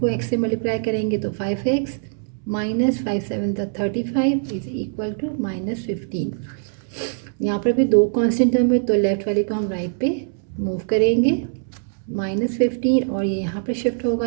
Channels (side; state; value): left; silent; 64 dB below the other